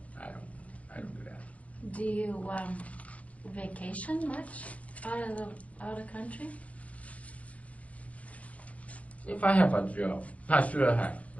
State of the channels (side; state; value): right; late; 0.066 ms